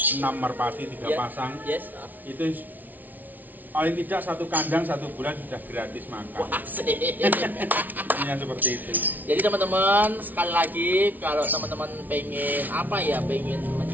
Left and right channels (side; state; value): left; late; 0.081 ms